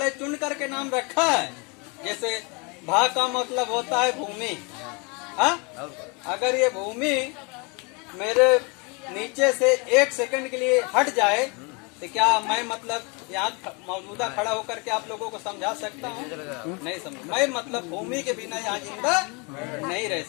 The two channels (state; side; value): quieter; right; 31.1 dB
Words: चुन करके नाम रखा है। जैसे भा का मतलब होता है भूमि। हाँ, अगर ये भूमि मेरे नीचे से 1 सेकंड के लिए हट जाए तो क्या मैं मतलब यहाँ मौजूदा खड़ा होकर के आप लोगों को समझा सकता हूँ? नहीं समझ। मैं मतलब भूमि के बिना यहाँ जिंदा नहीं रह